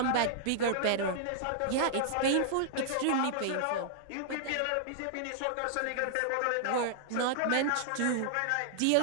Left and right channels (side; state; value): both; different; correlation -0.01